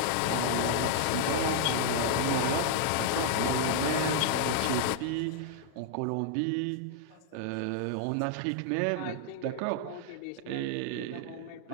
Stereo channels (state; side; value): different; both; correlation -0.01